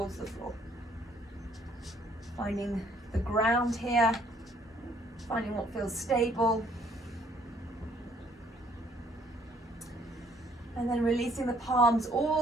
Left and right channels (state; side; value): normal; both; correlation 0.63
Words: the floor. Finding the ground here, finding what feels stable. And then releasing the palms